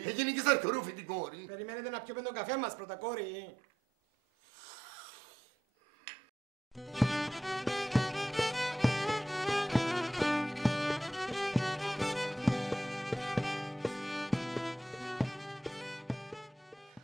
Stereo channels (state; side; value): normal; both; correlation 0.80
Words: Έγινε και ζαρκορούφι την κόρη. Περιμένετε να πιούμε τον καφέ μας πρώτα, κόρη.